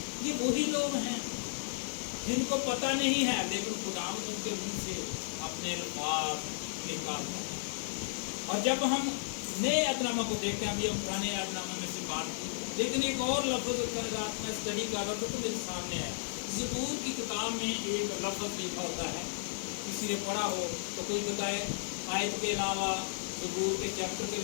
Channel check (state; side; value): silent; right; digital silence